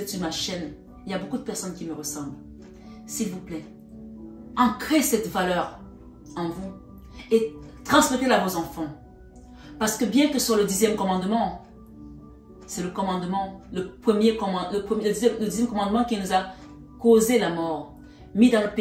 sur ma chaîne, il y a beaucoup de personnes qui me ressemblent. S'il vous plaît, ancrez cette valeur en vous et transmettez-la à vos enfants. Parce que bien que ce soit le 10e commandement, c'est le commandement, le 10e commandement qui nous a causé la mort, mis dans le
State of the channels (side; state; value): both; identical; correlation 1.00